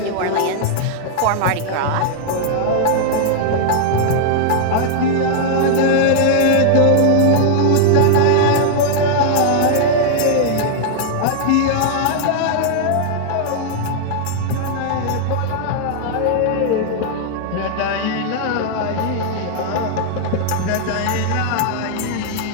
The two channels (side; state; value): both; different; correlation -0.01